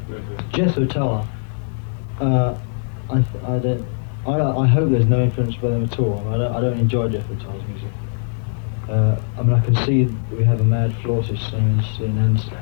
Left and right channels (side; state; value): right; silent; 65 dB below the other